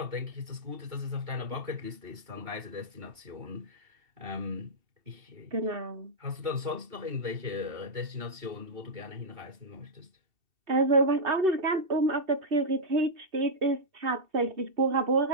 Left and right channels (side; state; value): left; late; 2.7 ms